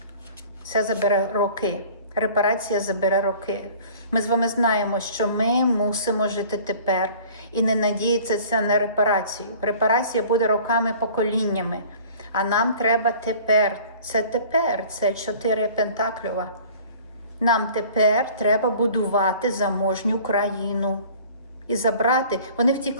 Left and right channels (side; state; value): both; inverted; correlation -0.48